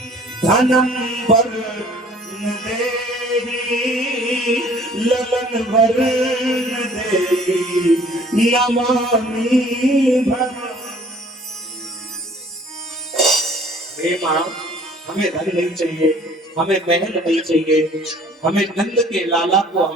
धनं वर्ण देहि, ललन वर्ण देहि नमामि भवानी। हे मां, हमें धन नहीं चाहिए, हमें महल नहीं चाहिए, हमें नंद के लाला को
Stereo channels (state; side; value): normal; both; correlation 0.53